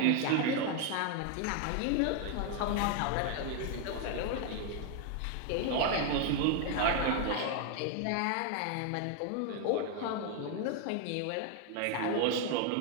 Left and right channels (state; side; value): different; both; correlation 0.00